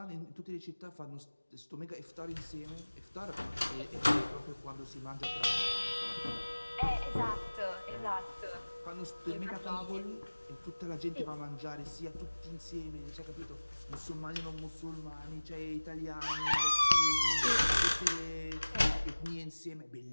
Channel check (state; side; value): inverted; both; correlation -1.00